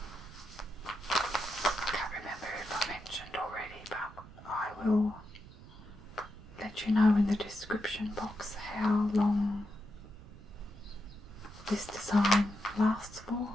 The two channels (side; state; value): right; noise; rumble, 18 dB below the sound